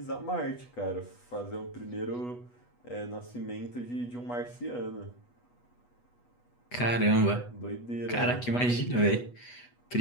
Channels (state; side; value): late; right; 8.2 ms